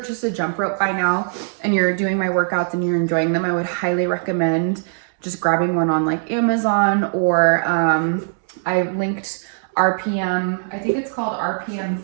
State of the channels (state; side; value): silent; left; digital silence